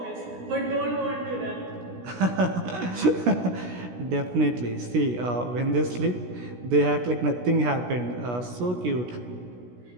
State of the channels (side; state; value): left; late; 16 ms